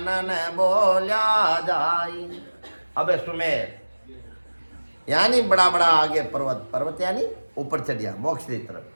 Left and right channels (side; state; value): both; inverted; correlation -1.00